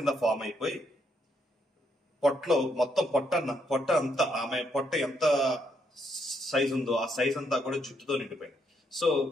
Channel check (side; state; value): both; normal; correlation 0.75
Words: ఫామ్ అయిపోయి పొట్టలో మొత్తం పొట్ట అంతా ఆమె పొట్ట ఎంత సైజ్ ఉందో ఆ సైజ్ అంతా కూడా జుట్టుతో నిండిపోయింది. సో